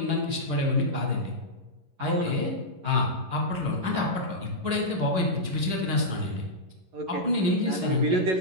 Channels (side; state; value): left; late; 11 ms